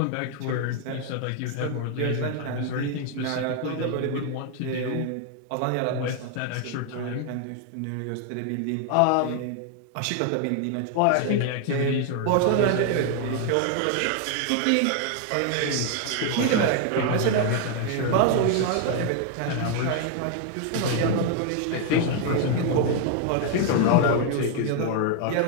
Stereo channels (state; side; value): different; both; correlation 0.00